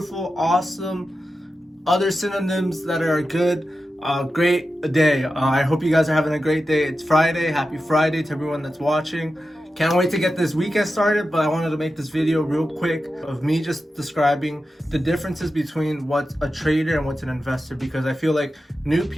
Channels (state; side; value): normal; both; correlation 0.91